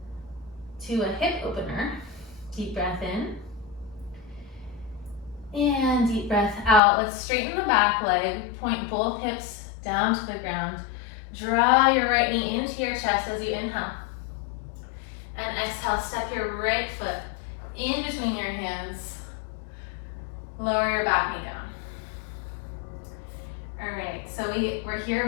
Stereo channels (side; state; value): right; drops out; at 6.8 s